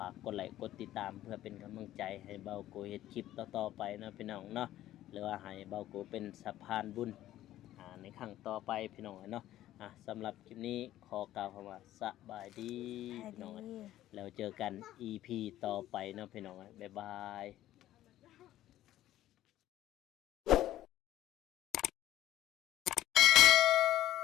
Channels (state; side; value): quieter; right; 13.7 dB